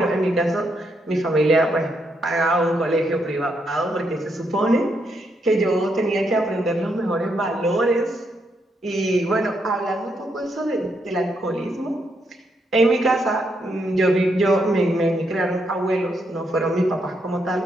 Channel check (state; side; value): normal; both; correlation 0.78